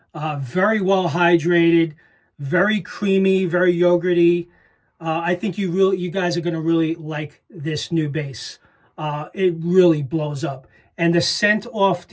Very well hydrated, very creamy, very yogurty. I think you guys are going to really like this new base. It really blows up. And the scent off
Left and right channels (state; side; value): identical; both; correlation 1.00